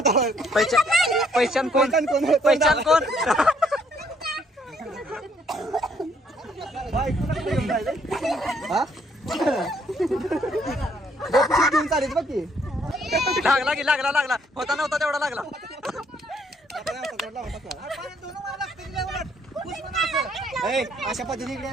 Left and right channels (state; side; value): normal; both; correlation 0.67